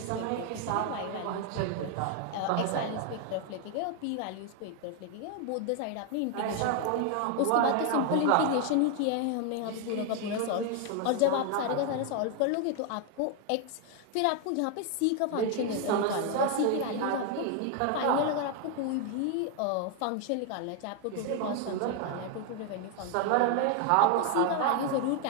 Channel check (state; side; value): different; both; correlation 0.01